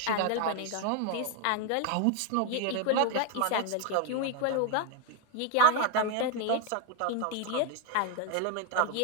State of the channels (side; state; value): both; different; correlation 0.01